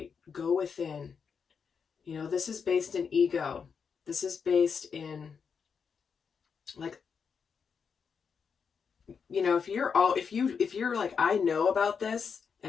Go within. You know, this is based in ego. This is based in, like, you know, if you're like, I know about this,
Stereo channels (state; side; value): quieter; right; 6.2 dB